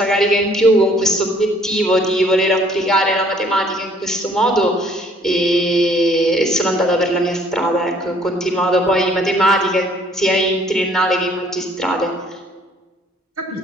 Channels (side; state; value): both; normal; correlation 0.60